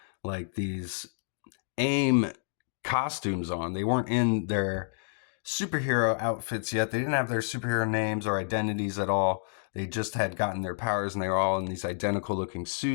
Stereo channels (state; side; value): silent; right; digital silence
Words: like these AIM costumes on. They weren't in their superhero outfits yet. They didn't have their superhero names or identities at all. They just had gotten their powers, and they were all in these identical looking